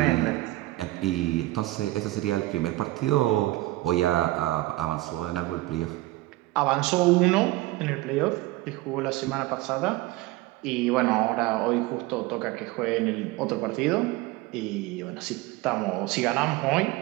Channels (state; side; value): quieter; left; 18.8 dB